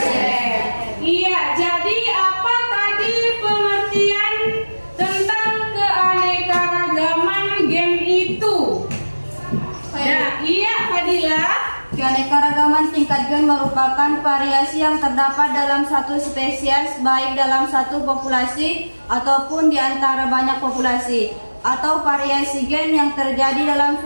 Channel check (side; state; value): both; inverted; correlation -1.00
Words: Iya, jadi apa tadi pengertian tentang keanekaragaman gen itu? Nah, iya Fadila. Keanekaragaman tingkat gen merupakan variasi yang terdapat dalam satu spesies, baik dalam satu populasi ataupun di antara banyak populasi, atau variasi gen yang terjadi dalam